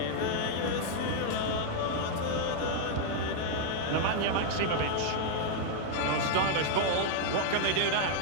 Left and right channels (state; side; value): different; both; correlation 0.00